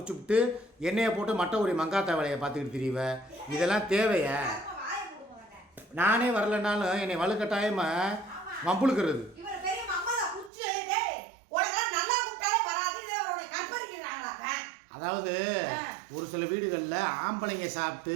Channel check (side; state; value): left; drops out; at 10.5 s